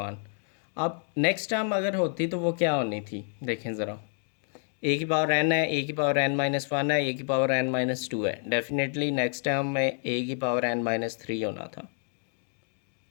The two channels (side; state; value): right; silent; 59 dB below the other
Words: अब next term अगर होती तो वो क्या होनी थी, देखें ज़रा। a की पावर n है, a की पावर n-1 है, a की पावर n-2 है। डेफिनेटली नेक्स्ट टर्म में a की पावर n-3 होना था।